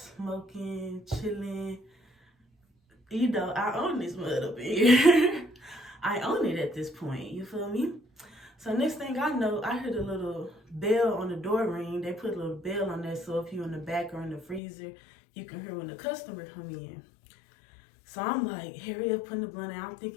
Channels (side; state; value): right; drops out; at 14.6 s